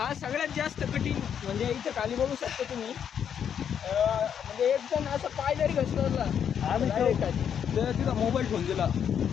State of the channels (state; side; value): quieter; right; 8.3 dB